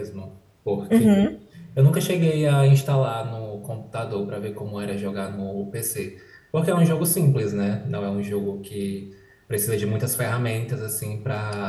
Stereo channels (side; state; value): both; identical; correlation 1.00